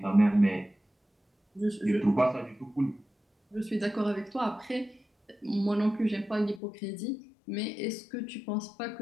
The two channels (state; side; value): drops out; right; at 6.6 s